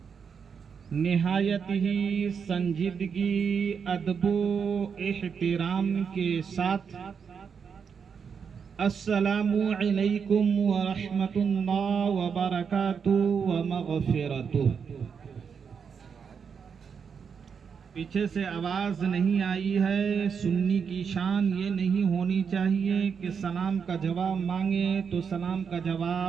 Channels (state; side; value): quieter; left; 6.5 dB